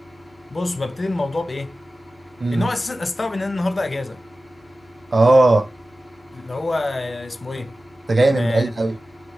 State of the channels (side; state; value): both; normal; correlation 0.95